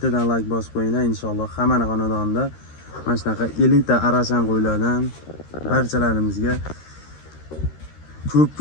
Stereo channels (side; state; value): right; late; 13 ms